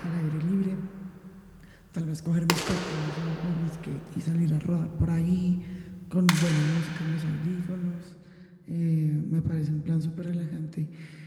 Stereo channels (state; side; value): identical; both; correlation 1.00